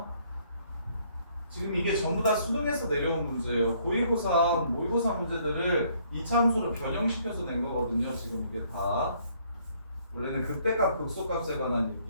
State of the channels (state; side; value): inverted; both; correlation -0.65